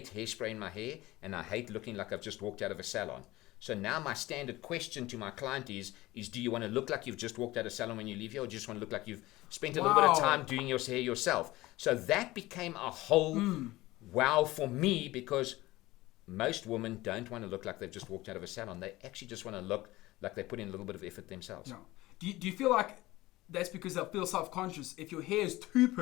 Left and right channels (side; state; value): right; quieter; 18.5 dB